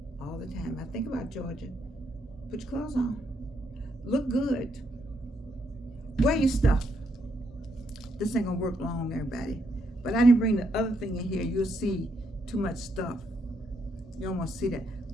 all the time. I think about Georgia. Put your clothes on. Look good. Wear your stuff. This ain't gonna work long, everybody. But I didn't bring the other thing in here. You'll see too much stuff. You don't want to see that.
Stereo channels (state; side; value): normal; both; correlation 0.77